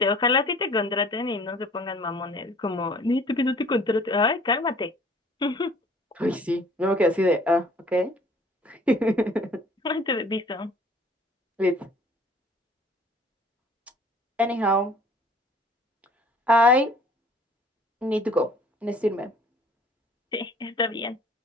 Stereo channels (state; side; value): normal; both; correlation 0.52